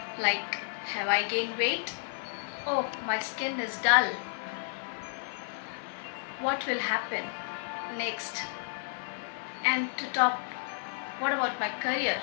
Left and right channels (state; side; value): silent; right; digital silence